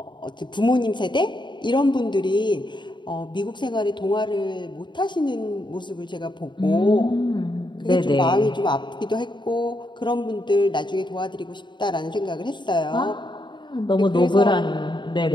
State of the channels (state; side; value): late; right; 0.22 ms